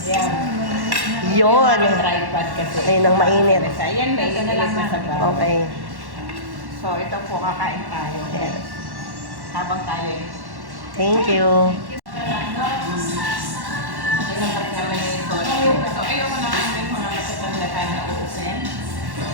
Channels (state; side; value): late; left; 1.1 ms